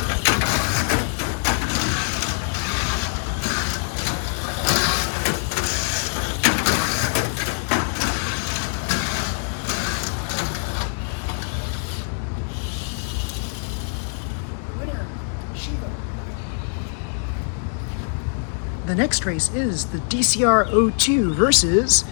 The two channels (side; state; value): right; silent; digital silence